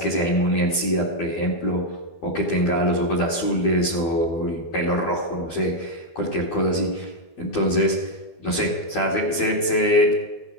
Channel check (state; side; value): late; right; 12 ms